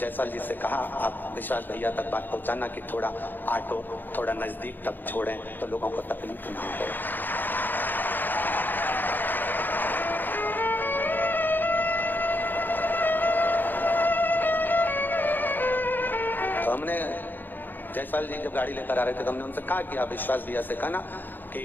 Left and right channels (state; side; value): late; right; 0.090 ms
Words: जी से कहा आप विश्वास भैया तक बात पहुंचाना कि थोड़ा ऑटो थोड़ा नजदीक तक छोड़ें तो लोगों को तकलीफ ना हो। तो हमने जायसवाल जी जब गाड़ी लेकर आ रहे थे तो हमने उनसे कहा कि आप विश्वास भैया से कहना कि